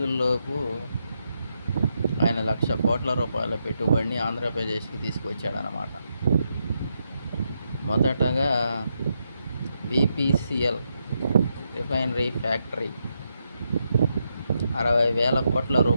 ఆయన 1,00,000 కోట్ల రూపాయల పెట్టుబడిని ఆంధ్రప్రదేశ్కి తీసుకొచ్చాడనమాట. మొదటగా BPCL రిఫైనరీ ఫ్యాక్టరీ 60,000 కోట్ల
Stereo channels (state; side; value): inverted; both; correlation -0.82